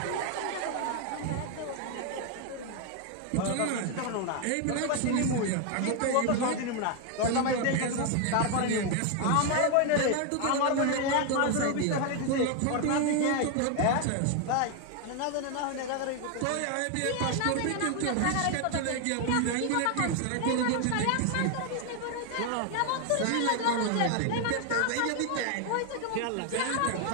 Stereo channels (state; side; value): different; both; correlation 0.01